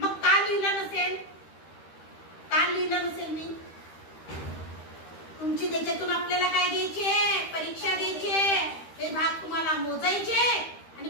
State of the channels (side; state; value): right; late; 13 ms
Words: का लिहिलं नसेल? का लिहिलं नसेल मी? तुमची त्याच्यातून आपल्याला काय द्यायचे? परीक्षा द्यायची. हे भाग तुम्हाला मोजायचे आणि